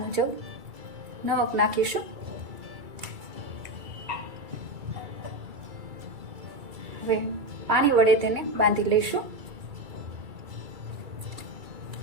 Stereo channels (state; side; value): late; left; 2.3 ms